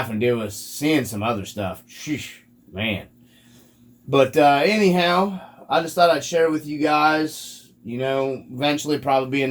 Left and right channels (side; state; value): both; identical; correlation 1.00